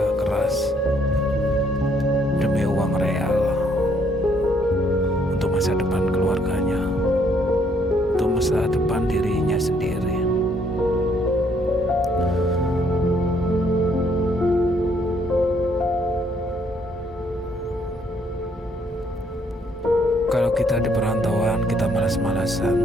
keras demi uang real, untuk masa depan keluarganya, untuk masa depan dirinya sendiri. Kalau kita di perantauan, kita malas-malasan,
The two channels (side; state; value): both; normal; correlation 0.68